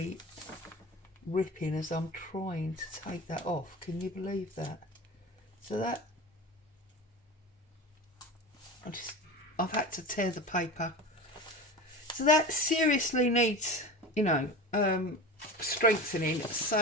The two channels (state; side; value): normal; both; correlation 0.30